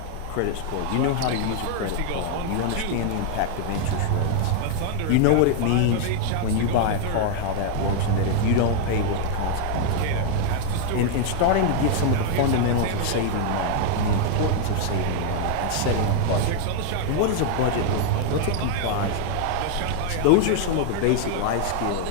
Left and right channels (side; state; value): both; different; correlation 0.00